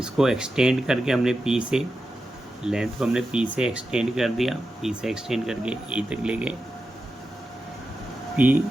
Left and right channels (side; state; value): both; normal; correlation 0.90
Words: एक्सटेंड करके हमने पी से लेंथ को हमने पी से एक्सटेंड कर दिया, पी से एक्सटेंड करके ए तक ले गए, पी